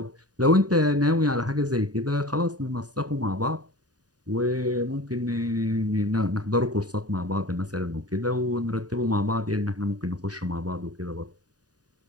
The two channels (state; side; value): late; left; 0.68 ms